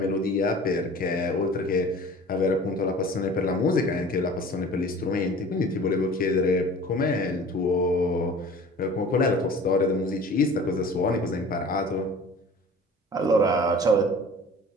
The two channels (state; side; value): normal; both; correlation 0.43